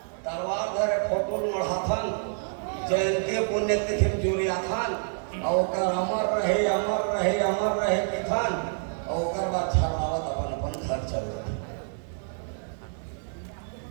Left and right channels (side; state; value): left; silent; digital silence